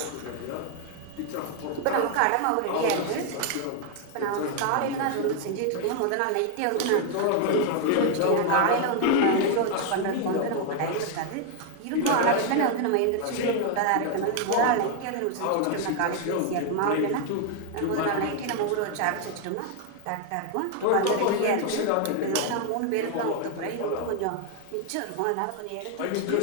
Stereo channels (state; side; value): different; both; correlation 0.00